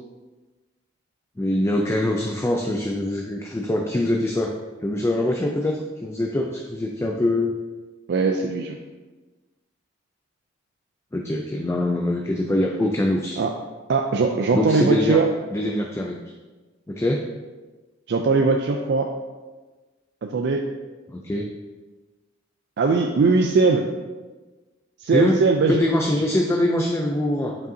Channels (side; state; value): both; normal; correlation 0.50